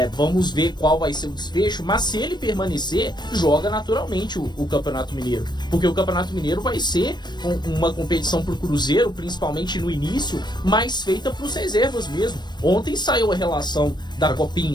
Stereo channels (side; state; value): right; late; 0.21 ms